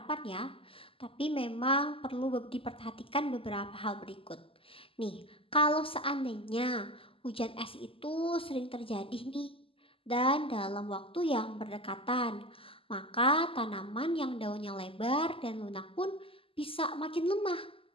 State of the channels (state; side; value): late; right; 0.26 ms